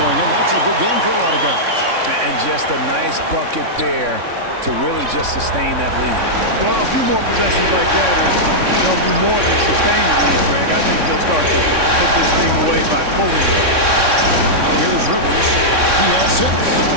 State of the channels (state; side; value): late; left; 3.6 ms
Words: in. That's a good game for a lot of guys. And just a nice bucket there to really just sustain that lead. Well, a few more possessions like that, and they'll do more than sustain the lead, Greg. I think they'll start to put this thing away by pulling it. Now here's Rivers. He has 6.